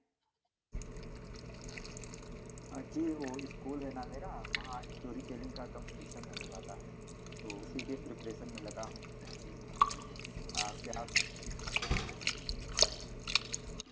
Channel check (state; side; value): identical; both; correlation 1.00